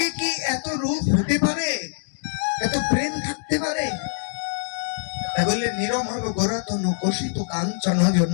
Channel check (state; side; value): silent; right; digital silence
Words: কি এত রূপ হতে পারে, এত প্রেম থাকতে পারে? বললে নিরমল গোরাতন কোষিত কাঞ্চন জন